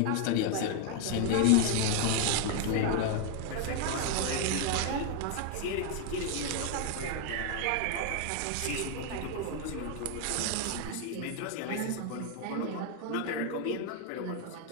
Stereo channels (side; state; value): both; different; correlation 0.01